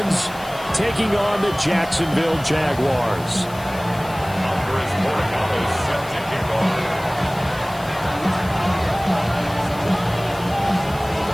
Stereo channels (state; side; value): noise; left; hiss, 19 dB below the sound